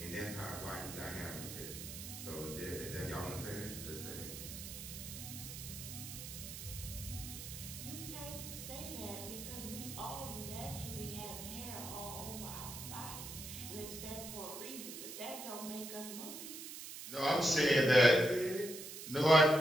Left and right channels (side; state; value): right; noise; hiss, 9 dB below the sound